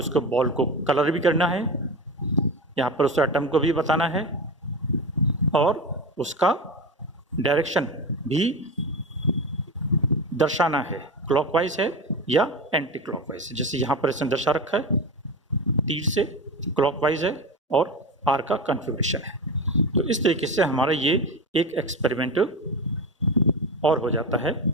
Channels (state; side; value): normal; both; correlation 0.23